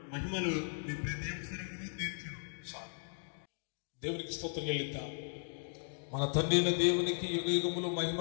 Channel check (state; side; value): silent; right; digital silence